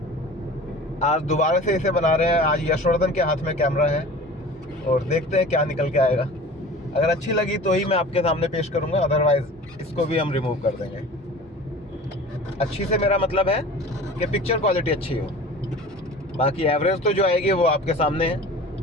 आज दोबारा से इसे बना रहे हैं। आज यशवर्धन के हाथ में कैमरा है और देखते हैं क्या निकल के आएगा। अगर अच्छी लगी तो ही मैं आपके सामने पेश करूँगा, अदरवाइज़ इसको भी हम रिमूव कर देंगे। अच्छी से मेरा मतलब है कि पिक्चर क्वालिटी अच्छी हो, बाकी एवरेज तो जो आएगी वो आपके सामने है।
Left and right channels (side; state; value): both; normal; correlation 0.40